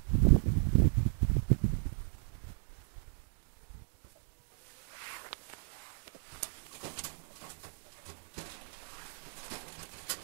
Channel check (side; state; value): left; silent; digital silence